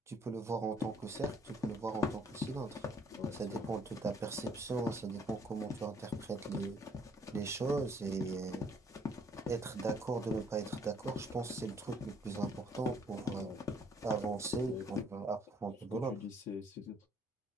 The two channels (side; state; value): both; normal; correlation 0.64